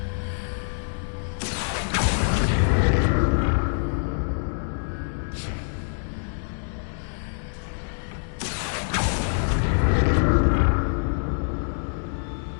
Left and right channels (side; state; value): right; silent; digital silence